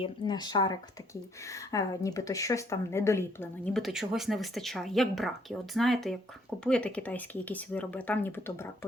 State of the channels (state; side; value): normal; both; correlation 0.67